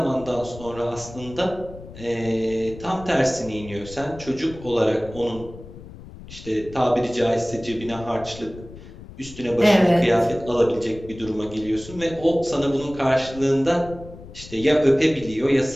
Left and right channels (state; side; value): noise; left; rumble, 16 dB below the sound